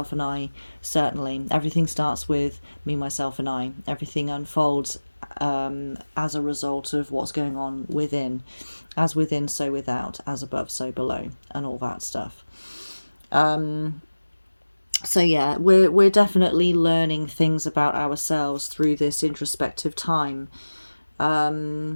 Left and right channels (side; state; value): both; inverted; correlation -1.00